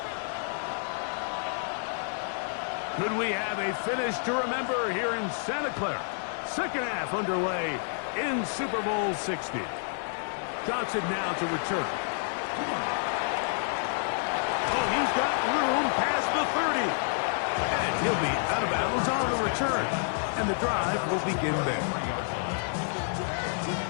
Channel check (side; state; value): right; silent; 56 dB below the other